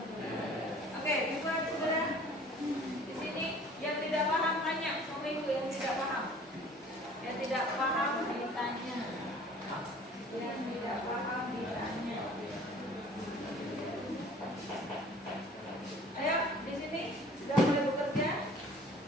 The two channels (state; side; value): normal; both; correlation 0.50